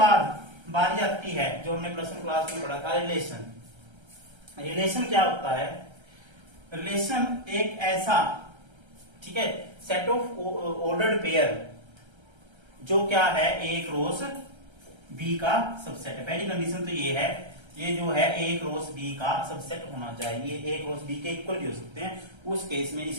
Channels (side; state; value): left; late; 1.3 ms